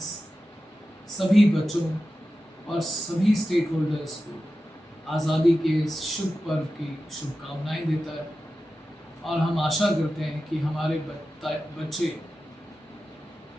सभी बच्चों और सभी स्टेक होल्डर्स को आज़ादी के इस शुभ पर्व की शुभकामनाएं देता है और हम आशा करते हैं कि हमारे बच्चे,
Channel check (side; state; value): both; normal; correlation 0.93